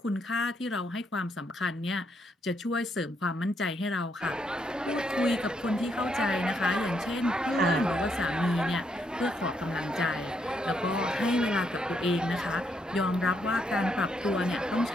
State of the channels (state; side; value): normal; both; correlation 0.76